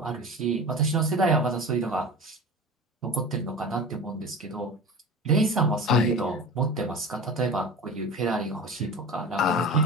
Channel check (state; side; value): normal; both; correlation 0.33